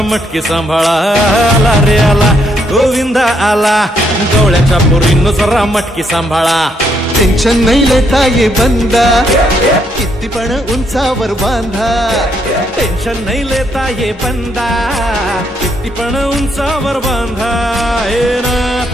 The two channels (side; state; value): both; normal; correlation 0.73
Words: मटकी सांभाळा आला रे आला गोविंदा आला गवळ्याच्या बोरीनं जरा मटकी सांभाळा टेन्शन नाही लेता ये बंदा किती पण उंचावर बांधा टेन्शन नाही लेता ये बंदा किती पण उंचावर बांधा हे ना